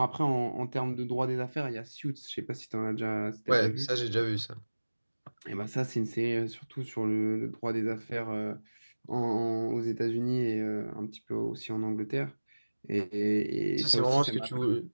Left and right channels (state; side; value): inverted; both; correlation -1.00